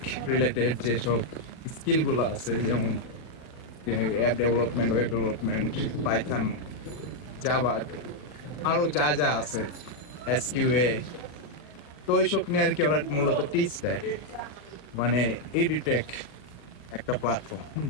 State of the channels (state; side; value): late; right; 40 ms